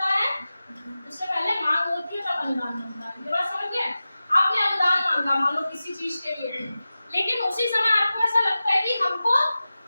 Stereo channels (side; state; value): both; inverted; correlation -0.95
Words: है? उससे पहले मांग होती है तब अनुदान बनता है। ये बात समझ गए? आपने अनुदान